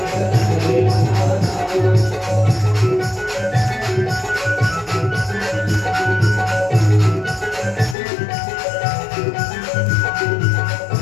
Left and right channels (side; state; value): right; drops out; at 8.0 s